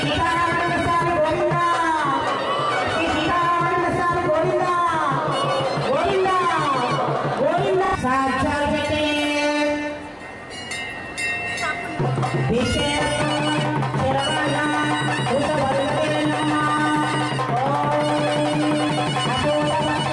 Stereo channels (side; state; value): both; identical; correlation 1.00